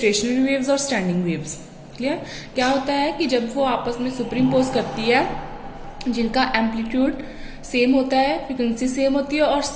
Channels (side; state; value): both; identical; correlation 1.00